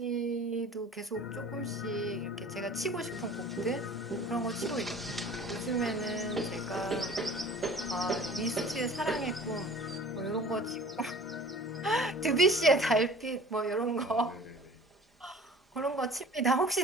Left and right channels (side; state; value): both; normal; correlation 0.45